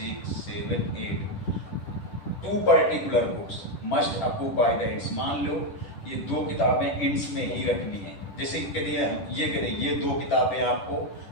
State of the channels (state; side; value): late; right; 10 ms